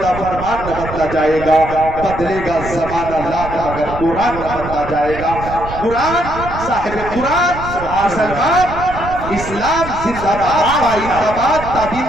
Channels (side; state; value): right; noise; rumble, 10 dB below the sound